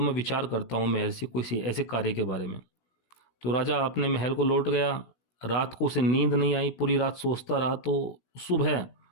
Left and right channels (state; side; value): late; right; 16 ms